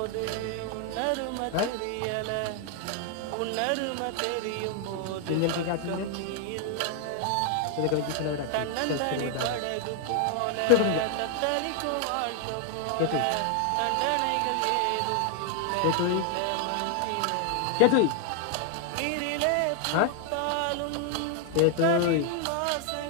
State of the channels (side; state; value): both; different; correlation 0.00